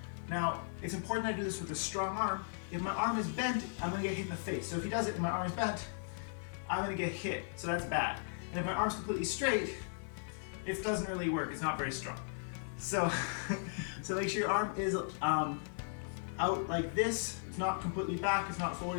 Now, it's important I do this with a strong arm. If my arm is bent, I'm going to get hit in the face. So if he does it and my arm is bent, I'm going to get hit. So that's bad. And if my arm's completely straight, it doesn't really work. It's not very strong. So, so make sure your arm is out like this. It's not completely back. It's not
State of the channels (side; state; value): right; silent; digital silence